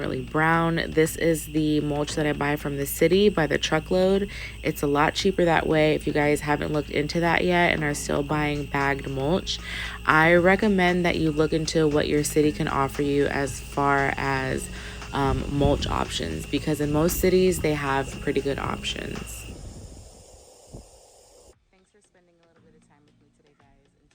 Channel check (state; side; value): identical; both; correlation 1.00